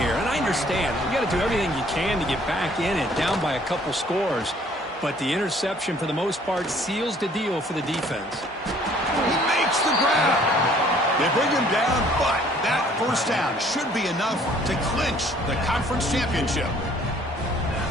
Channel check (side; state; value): both; normal; correlation 0.58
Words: And I understand. You got to do everything you can to get back in it, down by a couple scores. But the interception, for the most part, seals the deal for the defense. He makes the grab. They bring him down, but that first down should be enough to clinch the conference championship.